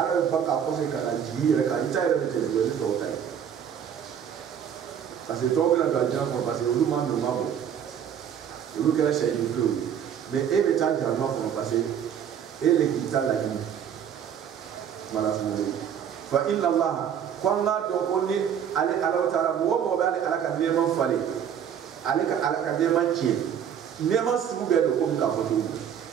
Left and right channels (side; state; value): left; quieter; 8.7 dB